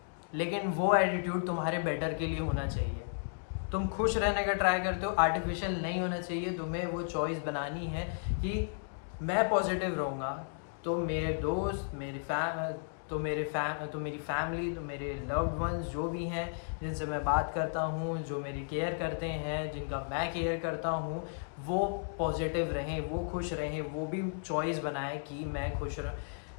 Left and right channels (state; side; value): silent; right; digital silence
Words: लेकिन वो एटीट्यूड तुम्हारे बेटर के लिए होना चाहिए। तुम खुश रहने का ट्राई करते हो, आर्टिफिशियल नहीं होना चाहिए। तुम्हें वो चॉइस बनानी है कि मैं पॉजिटिव रहूँगा, तो मेरे दोस्त, मेरी फैमिली, तो मेरे लव्ड वंस जो भी हैं जिनसे मैं बात करता हूँ, जो मेरी केयर करते हैं, जिनका मैं केयर करता हूँ, वो पॉजिटिव रहें, वो खुश रहें, वो भी चॉइस बनाए कि मैं खुश